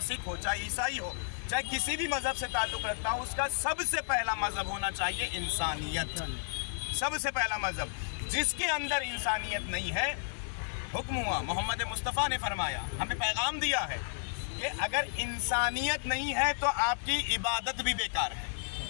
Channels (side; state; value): right; silent; 56 dB below the other